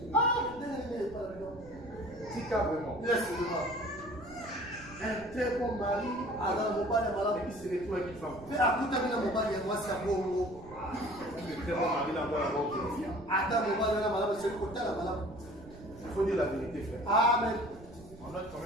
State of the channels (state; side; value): noise; right; rumble, 19 dB below the sound